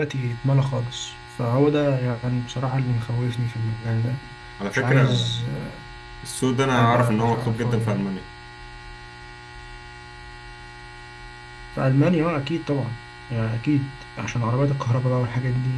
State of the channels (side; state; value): both; identical; correlation 1.00